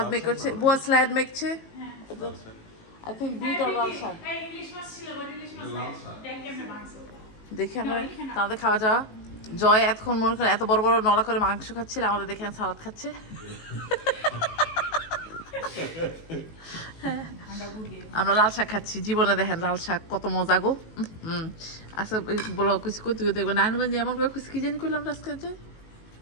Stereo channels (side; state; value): right; late; 18 ms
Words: মেক করছে, বুয়া স্লাইড মেকছে। আই থিঙ্ক বিট আর লাল শাক। দেখে আমরা তাদের খাওয়া যাওয়া। জয় এতক্ষণ মনে করেন এত বড় বড় নলা করে মাংস খাচ্ছিল, আমাদের দেখে সালাদ খাচ্ছে। আমরা লাল শাক খাচ্ছি, জীবনে দেখেন লাল শাক কত মজা গো। আচ্ছা বলো কুচি কই, তুই দেখবো নারায়ণগঞ্জে এমন করে কুচি কি জানি করলাম আজকে,